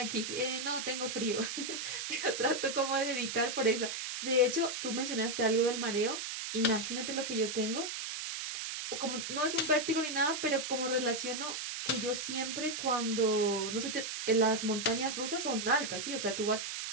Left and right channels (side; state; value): right; noise; hiss, 5 dB below the sound